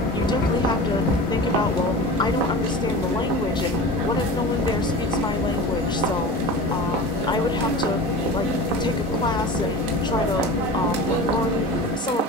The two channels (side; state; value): both; normal; correlation 0.33